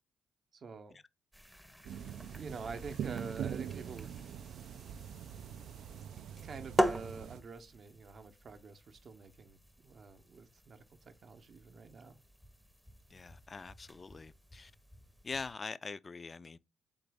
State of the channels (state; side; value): normal; both; correlation 0.88